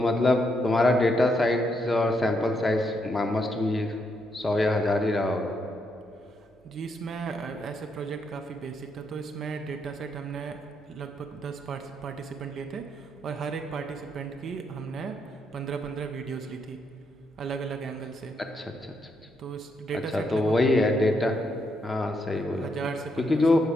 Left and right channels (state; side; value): normal; both; correlation 0.78